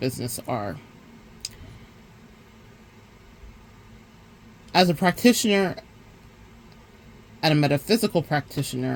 are. As a practitioner and a metaphysical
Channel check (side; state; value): both; identical; correlation 1.00